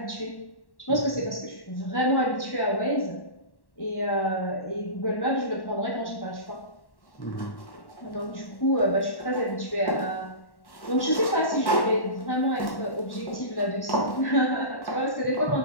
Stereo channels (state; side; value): late; right; 1.1 ms